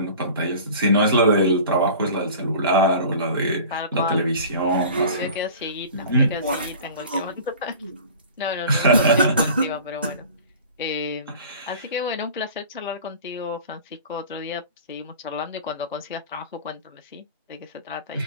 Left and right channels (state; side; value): inverted; both; correlation -0.41